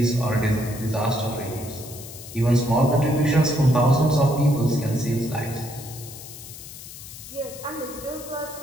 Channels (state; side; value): noise; left; hiss, 14 dB below the sound